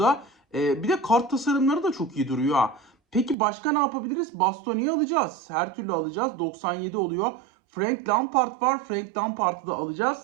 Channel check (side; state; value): left; drops out; at 3.4 s